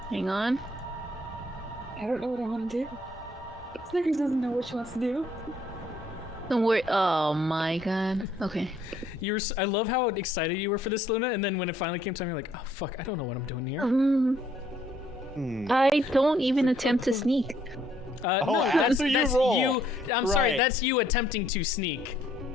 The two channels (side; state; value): both; normal; correlation 0.66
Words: Hang on. I don't know what I want to do. Snickers doesn't know what she wants to do. Don't worry. Oh my god. Okay. I love how excited you were for this, Luna, and then when it finally came time, you're like, oh fuck, I don't know what I'm doing here. I don't even attempt to sneak. No, after you roll. I'm sorry, Right. that's you attempting to sneak.